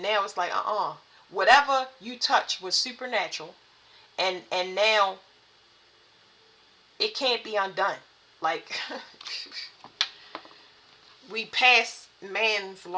now it's like whatever you touch was supernatural, and now it can't be undone. Like we pass man's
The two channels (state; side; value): identical; both; correlation 1.00